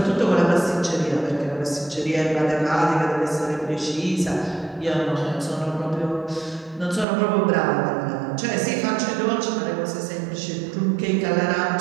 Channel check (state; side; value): drops out; left; at 7.1 s